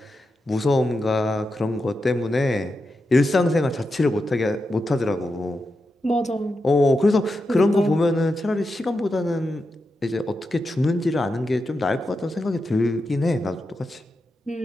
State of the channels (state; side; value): normal; both; correlation 0.88